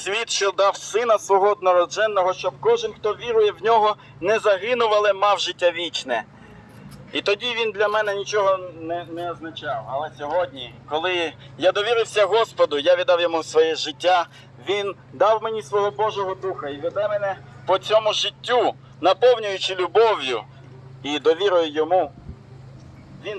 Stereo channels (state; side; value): identical; both; correlation 1.00